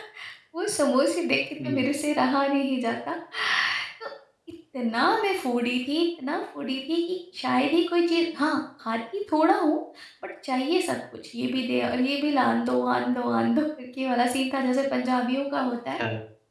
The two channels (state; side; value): identical; both; correlation 1.00